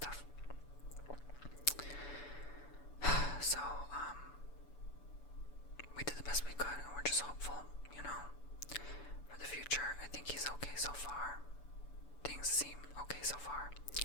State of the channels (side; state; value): right; late; 6.9 ms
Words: So, we did the best we could, and we're just hopeful, for the future. I think he's okay so far. Things seem okay so far.